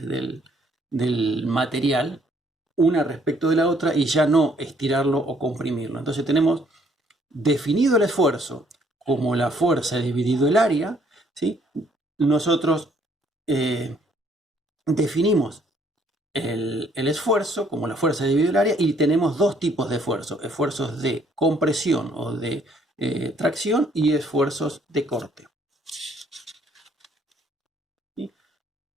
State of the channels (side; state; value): both; normal; correlation 0.65